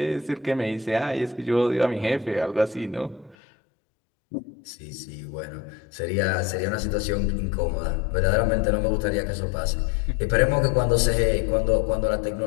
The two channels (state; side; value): drops out; right; at 3.4 s